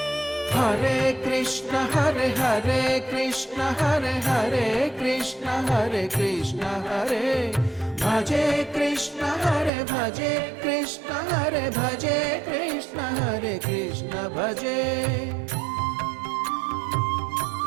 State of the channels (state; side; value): drops out; left; at 9.7 s